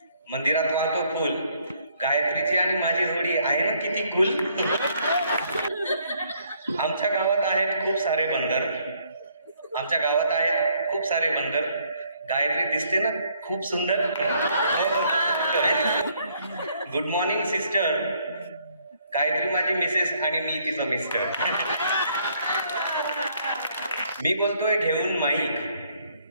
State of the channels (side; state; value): both; inverted; correlation -0.67